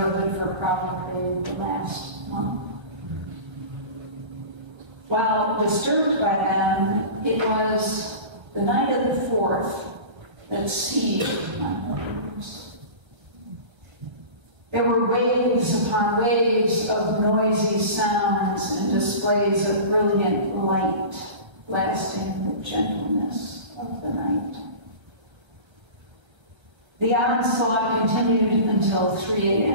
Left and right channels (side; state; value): left; late; 1.3 ms